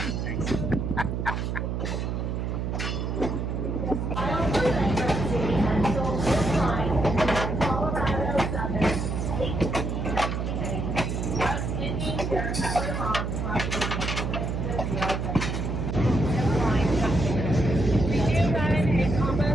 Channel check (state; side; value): noise; right; hum, 2 dB below the sound